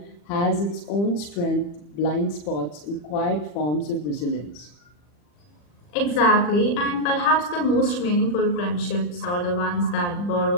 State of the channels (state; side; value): late; right; 40 ms